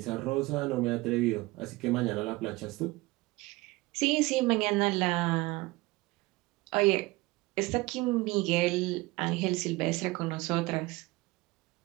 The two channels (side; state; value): left; quieter; 21.7 dB